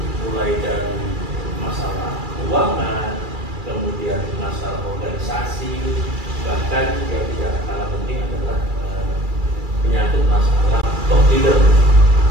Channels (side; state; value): left; late; 2.3 ms